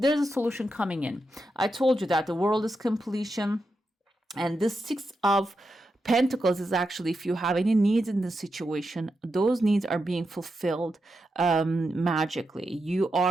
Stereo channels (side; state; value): both; normal; correlation 0.87